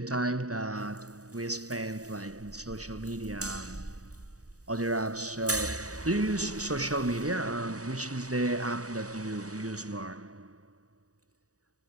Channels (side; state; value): left; late; 0.66 ms